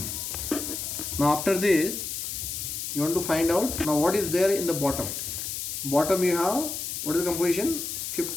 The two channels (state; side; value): noise; left; hiss, 5 dB below the sound